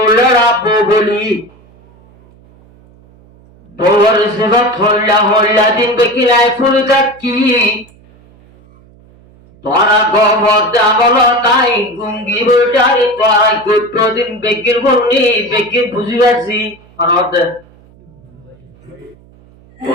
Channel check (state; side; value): noise; right; hum, 28 dB below the sound